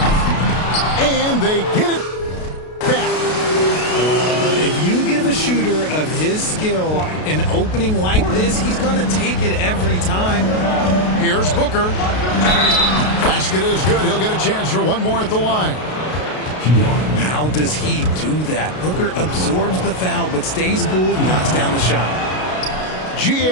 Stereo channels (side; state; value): right; late; 33 ms